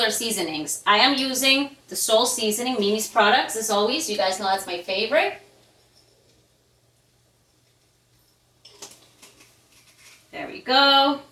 our seasonings. I am using the Soul Seasoning, Mimi's products, as always. You guys know that's my favorite. There we go.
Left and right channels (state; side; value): identical; both; correlation 1.00